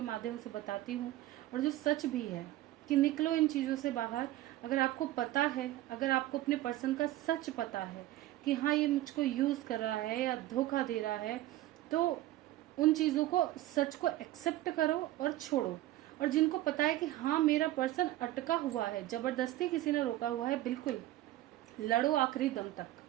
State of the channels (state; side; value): quieter; left; 15.3 dB